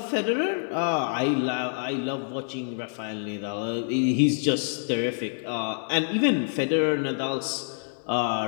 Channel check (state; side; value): silent; right; 59 dB below the other